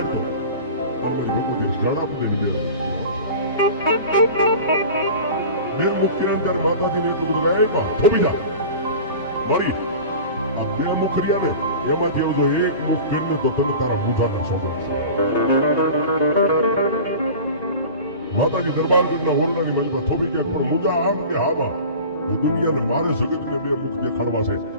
फिर मुखिया अंदर माता जी ने कुछ लगाया थोपी जा मरी ते मुखरिया ने एमा जेव जो एक मुख फेरने तो तुम तारा मुठा ने सोगन माता जी दरबार जन्ना ओरडा ની મલમાં થોપી કે પર મુજા આમ કે હાબા દુનિયાને મારે જગત ને બે મુખ દેખાડવા છે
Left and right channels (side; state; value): both; inverted; correlation -0.36